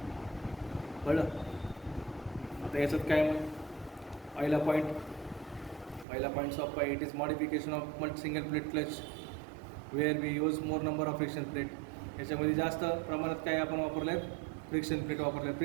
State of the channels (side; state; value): left; drops out; at 6.1 s